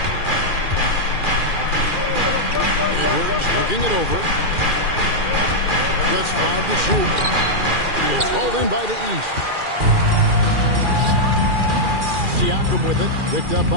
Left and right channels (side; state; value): left; late; 2.4 ms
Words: Edwards looking it over. Gets 5 to shoot. He is hauled in by the East. Siakam with it. Picked up